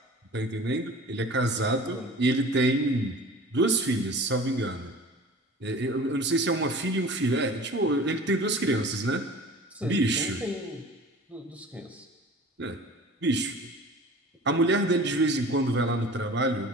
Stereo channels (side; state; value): both; normal; correlation 0.41